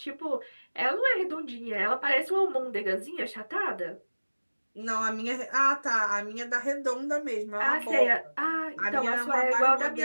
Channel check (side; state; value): both; inverted; correlation -1.00